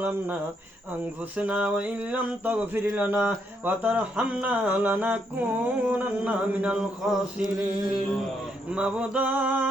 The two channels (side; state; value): both; normal; correlation 0.75